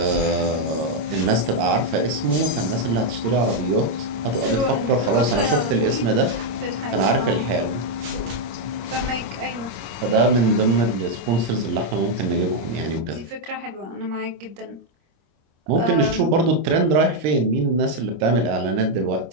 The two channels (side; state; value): left; late; 26 ms